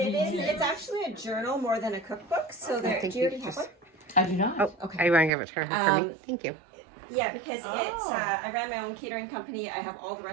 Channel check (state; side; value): drops out; left; at 5.3 s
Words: actually a journal more than a cookbook. So there, do you already have one? I do not. Oh, okay. I want to give it to her for me. Thank you. Yeah, because it's, I ran my own catering company. I have all the